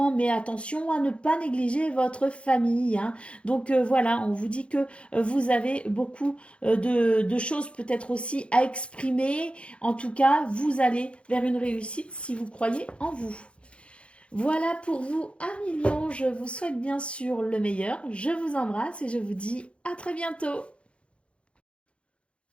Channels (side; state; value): right; late; 0.059 ms